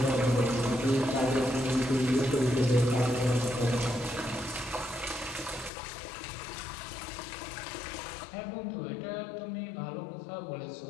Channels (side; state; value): right; drops out; at 5.7 s